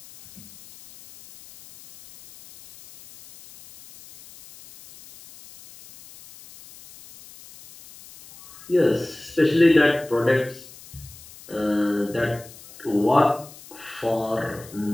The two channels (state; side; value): noise; left; hiss, 20 dB below the sound